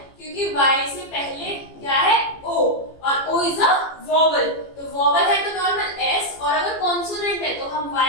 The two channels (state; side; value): late; right; 15 ms